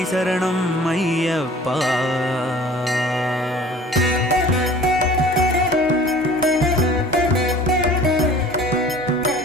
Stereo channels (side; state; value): both; normal; correlation 0.47